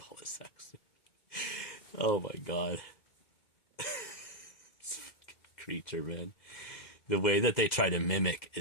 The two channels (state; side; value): late; right; 2.1 ms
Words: it sex. Oh my god, this fucking creature, man. The way that they try to mimic